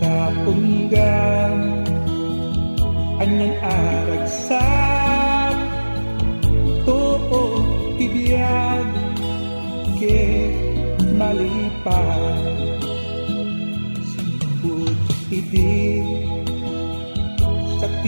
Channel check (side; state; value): both; inverted; correlation -1.00